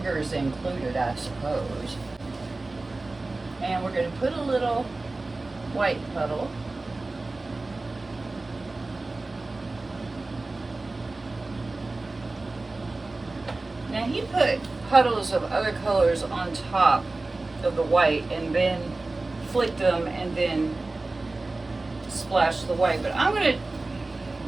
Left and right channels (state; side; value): quieter; left; 3.2 dB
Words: included, I suppose. And we're going to put a little white puddle. Now he put puddles of other colors on top of the white and then flicked them and then splashed the white. But I'm going to,